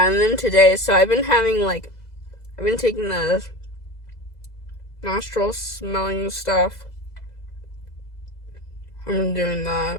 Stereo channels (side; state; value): right; late; 2.0 ms